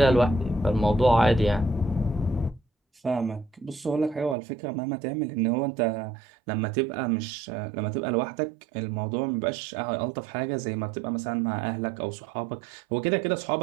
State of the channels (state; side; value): drops out; left; at 4.4 s